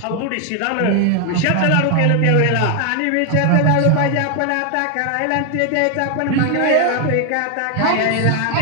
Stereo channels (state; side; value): different; both; correlation 0.00